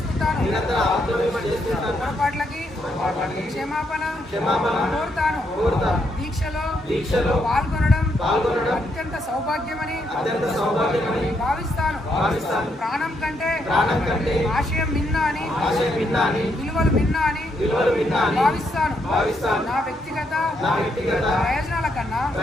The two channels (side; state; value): both; normal; correlation 0.77